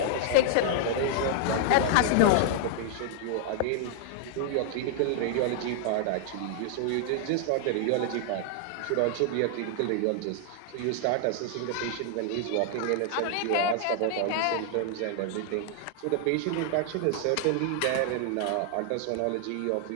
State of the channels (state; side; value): different; both; correlation 0.00